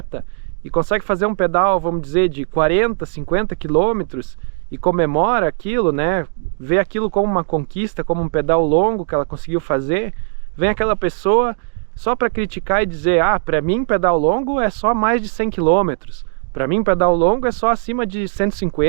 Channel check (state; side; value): silent; left; digital silence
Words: e consegue fazer um pedal, vamos dizer, de 40, 50 quilômetros e comemora aquilo, né? Vê aquilo como uma conquista, como um pedal longo que ela conseguiu fazer, vem aquela pessoa só para criticar e dizer, para mim pedal longo é só mais de 100 km, para mim pedal longo é só acima de